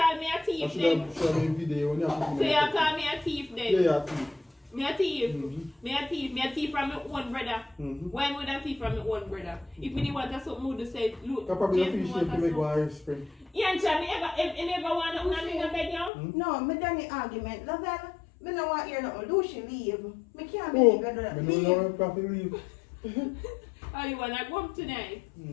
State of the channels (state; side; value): drops out; right; at 16.1 s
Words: me a I thief should then. have shot a video when you have to So you call me a thief then. Yeah, yeah, thief. Me a thief. Mhm. Me a thief from my own brother. Mhm. Why would I thief from my own brother? If me want to something would say, look, I probably Jason appreciate want to to make something. one Irish spring. Yeah, and me ever want to in a bed now? No, me done the argument. Lavelle, me no want hear nothing. Lucy leave. Me can't Oh, believe you do that. I Leave. don't know if I can leave. Oh, you want to go home tonight?